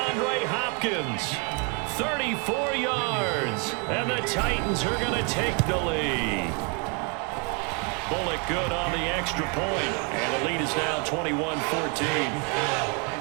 Hopkins, 34 yards, and the Titans are going to take the lead. Bullock good on the extra point, and the lead is now 21-14.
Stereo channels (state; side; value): quieter; left; 34.9 dB